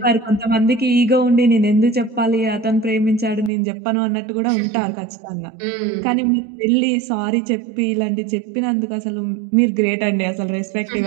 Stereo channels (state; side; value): drops out; left; at 3.5 s